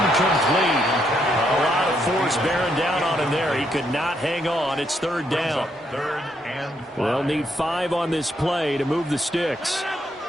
A lot of force bearing down on him there. He could not hang on. It's third down. They'll need 5 on this play to move the sticks.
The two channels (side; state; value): both; normal; correlation 0.75